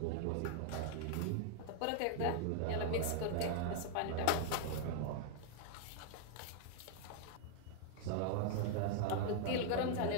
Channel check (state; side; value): different; both; correlation 0.00